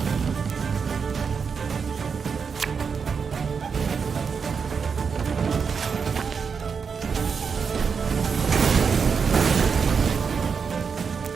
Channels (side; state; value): left; quieter; 5.9 dB